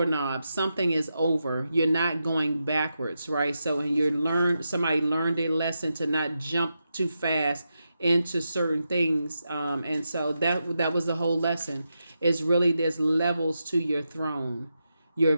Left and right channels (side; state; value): both; inverted; correlation -0.87